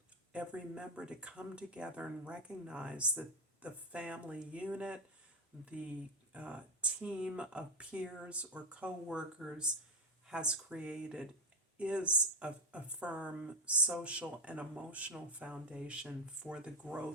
every member to come together and recognize that the family unit, the team of peers or co-workers has created is a firm social and emotional foundation for the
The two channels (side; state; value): both; normal; correlation 0.10